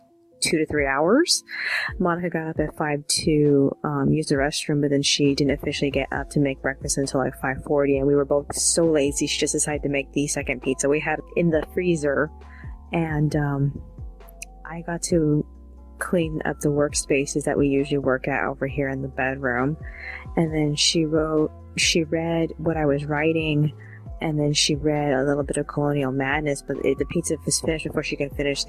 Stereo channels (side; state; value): both; identical; correlation 1.00